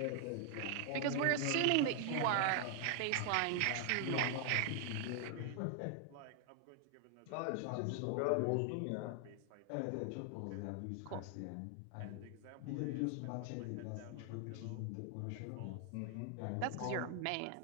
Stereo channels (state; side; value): different; both; correlation 0.00